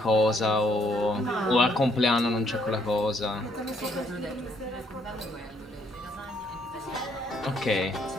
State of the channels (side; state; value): both; normal; correlation 0.69